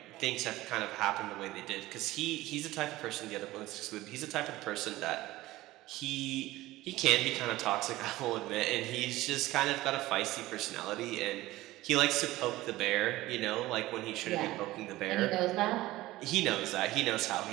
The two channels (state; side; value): quieter; left; 17.5 dB